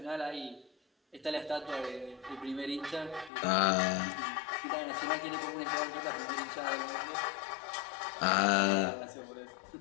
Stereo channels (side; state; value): right; drops out; at 3.3 s